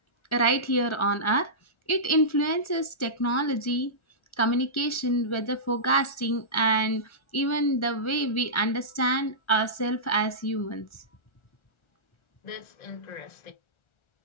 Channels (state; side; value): late; right; 1.4 ms